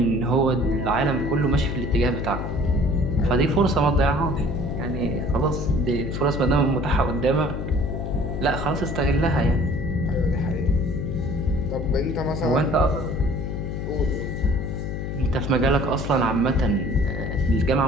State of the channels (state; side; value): noise; left; hum, 4 dB below the sound